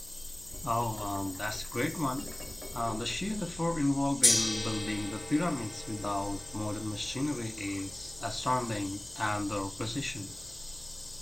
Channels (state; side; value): noise; left; hum, 22 dB below the sound